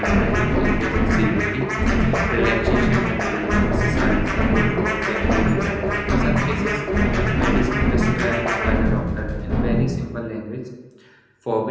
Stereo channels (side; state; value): both; identical; correlation 1.00